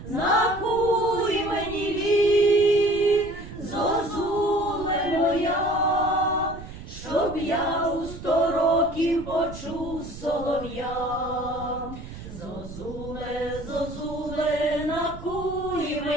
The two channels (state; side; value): noise; right; rumble, 13 dB below the sound